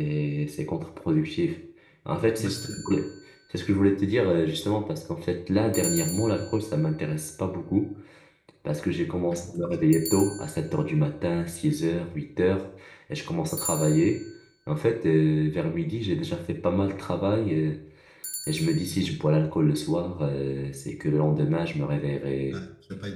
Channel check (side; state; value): both; identical; correlation 1.00